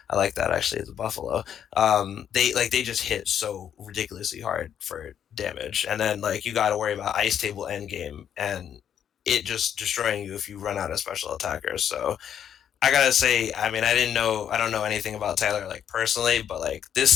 I like that actually, the Buffalo. They just hit so ridiculously hard for damage, and then like you got to worry about Ice Table Endgame and it just destroying you if you run out of special attackers. So I gotta say, I mean, I don't know anything about Tyler like personally, but like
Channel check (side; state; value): right; quieter; 9.2 dB